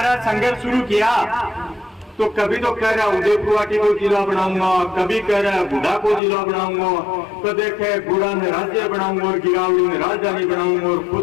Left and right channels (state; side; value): drops out; right; at 6.2 s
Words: रहा, संघर्ष शुरू किया, तो कभी तो कह रहा उदयपुर को जिला बनाऊंगा, कभी कह रहा गुड़ा को जिला बनाऊंगा, तो देखे गुड़ा में राज्य बनाऊंगा और गिरावली में राजधानी बनाऊंगा और